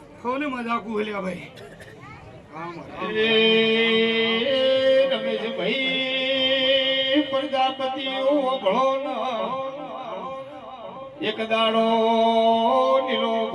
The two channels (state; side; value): identical; both; correlation 1.00